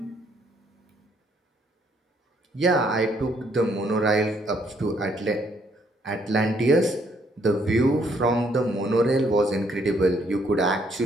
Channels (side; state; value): both; normal; correlation 0.69